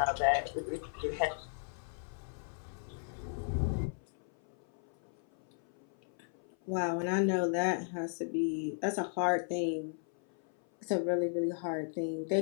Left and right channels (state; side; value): silent; right; 54 dB below the other